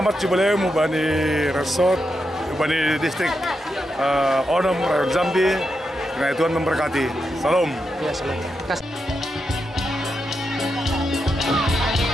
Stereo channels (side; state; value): both; normal; correlation 0.85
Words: jubileum Bani Resort, Bani distrik Onam Rayon Jambi. Karena Tuhan memberkati. Salam. Ya, salam.